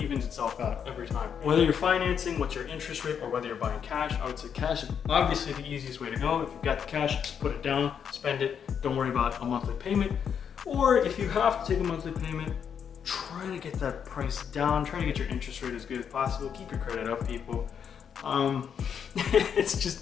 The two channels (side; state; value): right; quieter; 7.6 dB